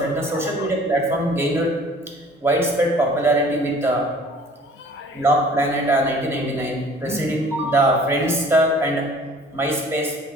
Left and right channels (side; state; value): both; normal; correlation 0.50